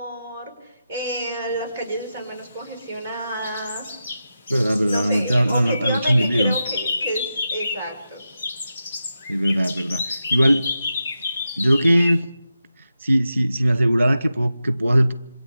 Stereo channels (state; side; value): inverted; both; correlation -0.90